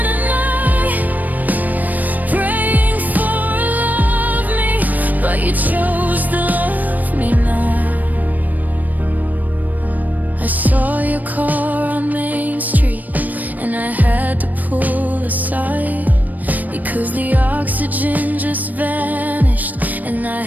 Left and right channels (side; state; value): left; late; 0.082 ms